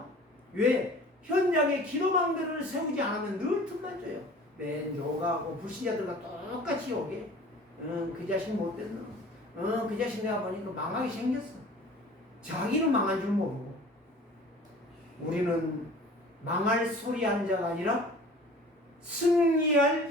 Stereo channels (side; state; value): both; normal; correlation 0.45